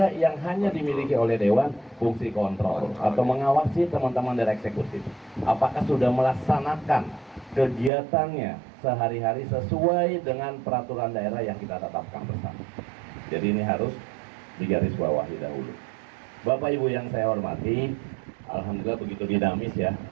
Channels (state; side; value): drops out; left; at 7.9 s